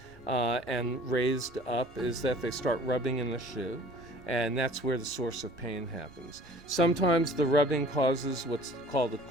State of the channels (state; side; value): normal; both; correlation 0.49